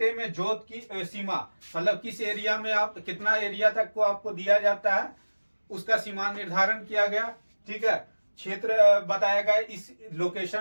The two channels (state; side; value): inverted; both; correlation -1.00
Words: में जोत की सीमा मतलब किस एरिया में आप कितना एरिया तक को आपको दिया जाता है उसका सीमा निर्धारण किया गया, ठीक है। क्षेत्र बताया गया, इस